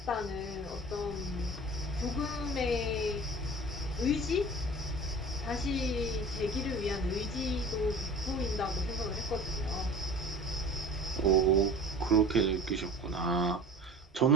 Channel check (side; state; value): both; normal; correlation 0.40